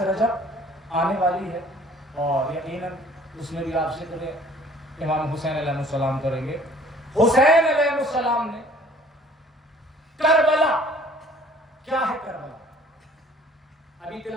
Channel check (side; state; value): both; normal; correlation 0.54